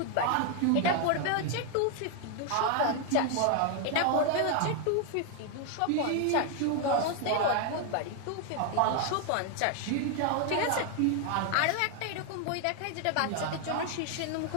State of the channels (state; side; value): different; both; correlation 0.00